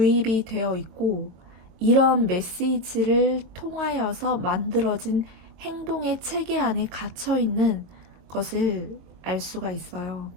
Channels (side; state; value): left; late; 23 ms